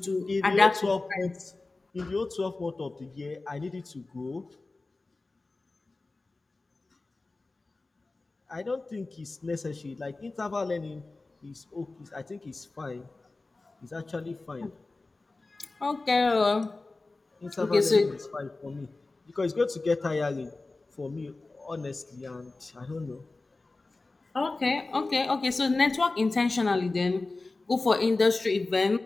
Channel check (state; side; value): quieter; right; 3.4 dB